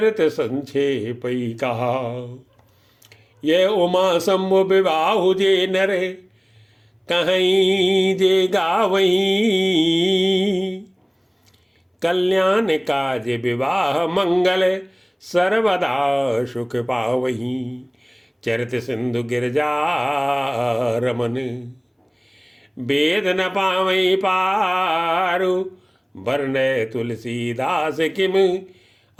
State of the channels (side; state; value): both; identical; correlation 1.00